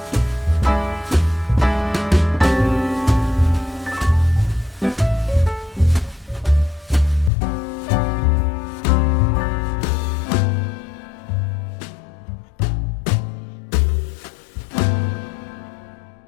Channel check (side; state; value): right; drops out; at 7.3 s